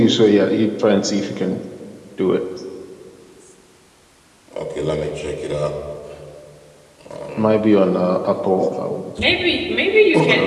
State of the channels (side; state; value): both; identical; correlation 1.00